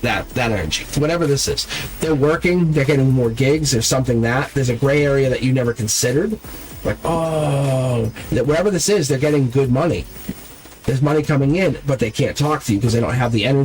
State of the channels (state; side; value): identical; both; correlation 1.00